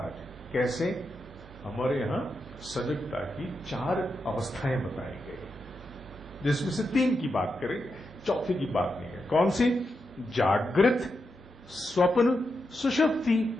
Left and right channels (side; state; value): both; normal; correlation 0.86